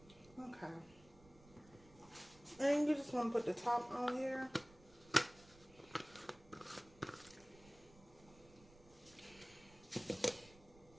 Okay. And you just want to put the top on here.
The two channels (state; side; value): noise; right; rumble, 23 dB below the sound